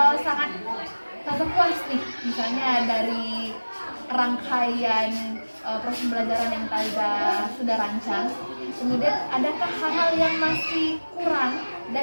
sangat Taza puas nih, misalnya dari rangkaian proses pembelajaran yang Taza sudah rancang. Kemudian adakah hal-hal yang masih kurang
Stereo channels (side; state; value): both; inverted; correlation -1.00